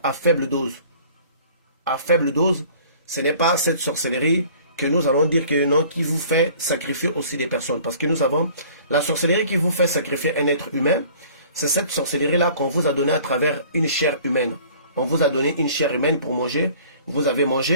à faible dose. À faible dose, ce n'est pas cette sorcellerie que nous allons dire que non, qui vous fait sacrifier aussi des personnes. Parce que nous avons la sorcellerie qui vous fait sacrifier un être humain. C'est cette sorcellerie-là qu'on vous a donnée à travers une chair humaine. On vous a donné une chair humaine pour manger. Vous avez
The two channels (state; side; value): inverted; both; correlation -0.50